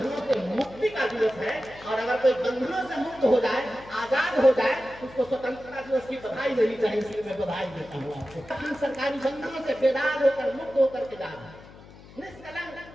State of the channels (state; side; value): noise; left; hum, 20 dB below the sound